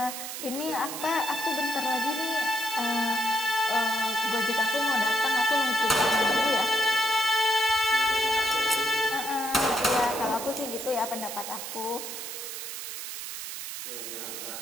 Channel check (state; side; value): noise; right; hiss, 7 dB below the sound